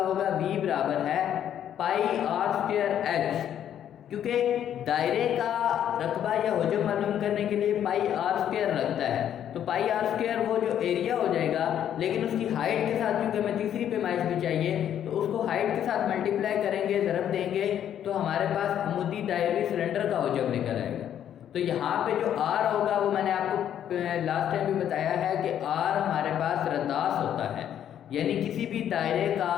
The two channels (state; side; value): quieter; right; 10.1 dB